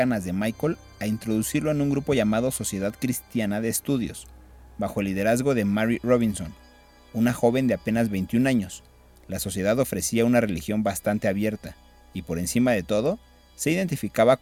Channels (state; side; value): identical; both; correlation 1.00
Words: de Michael, a introducirlo en un grupo llamado Sociedad Cristiana de Estudios, bajo el liderazgo de Mary Robinson, una joven de apenas 21 años. La sociedad ofrecía una religión bastante abierta y, por encima de todo, se identificaba